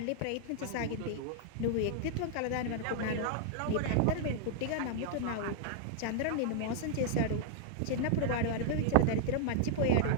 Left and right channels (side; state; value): both; different; correlation -0.01